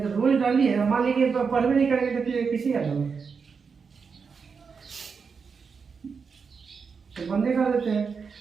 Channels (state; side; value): quieter; left; 5.6 dB